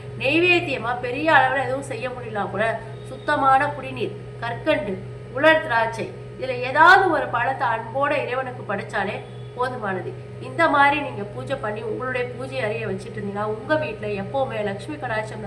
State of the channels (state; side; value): identical; both; correlation 1.00